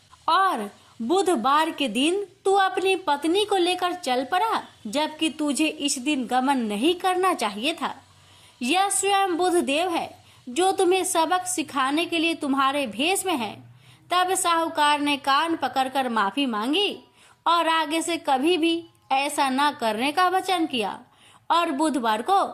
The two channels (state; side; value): identical; both; correlation 1.00